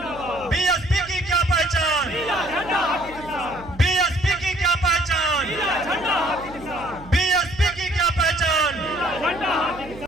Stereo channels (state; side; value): noise; right; hum, 18 dB below the sound